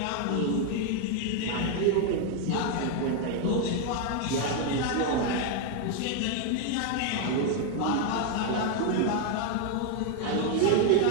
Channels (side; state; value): both; different; correlation 0.01